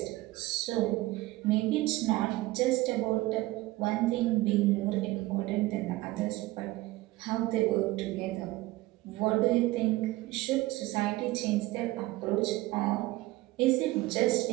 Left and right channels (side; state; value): left; quieter; 18.8 dB